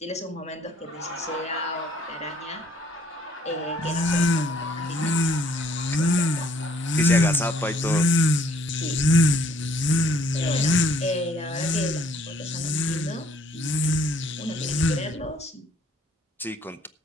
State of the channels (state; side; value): normal; both; correlation 0.63